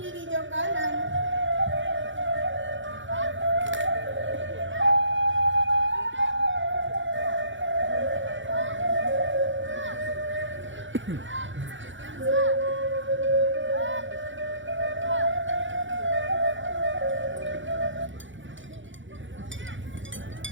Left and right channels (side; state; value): left; late; 0.55 ms